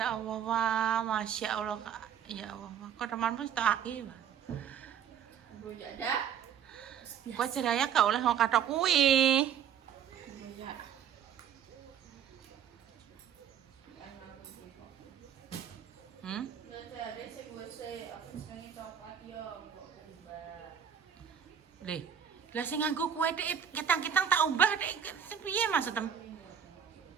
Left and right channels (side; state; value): left; quieter; 8.5 dB